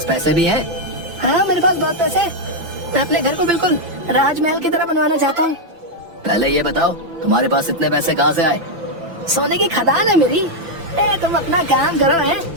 पैसे भी हैं? हाँ, मेरे पास बहुत पैसे हैं। मैं अपने घर को बिल्कुल राजमहल की तरह बनवाना चाहता हूँ। पहले ये बताओ, तुम्हारे पास इतने पैसे कहाँ से आए? सोने की खदान है मेरी। तुम अपना काम करो,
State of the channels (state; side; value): late; left; 5.9 ms